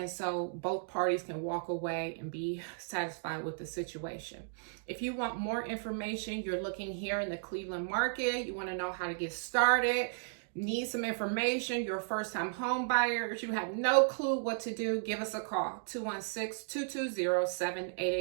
so both parties can walk away and be satisfied with the situation. If you want more information, you're looking here in the Cleveland market, you want to know how to get started, need some information, you're a first-time home buyer, you have no clue what to do, give us a call,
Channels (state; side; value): silent; left; digital silence